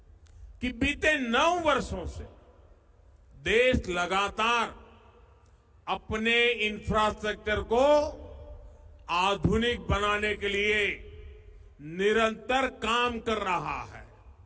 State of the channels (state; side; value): identical; both; correlation 1.00